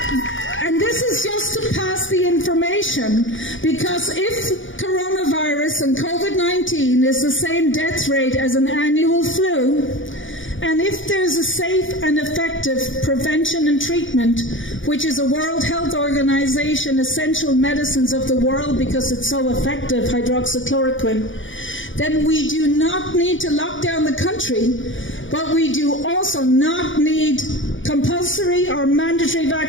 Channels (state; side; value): late; right; 0.56 ms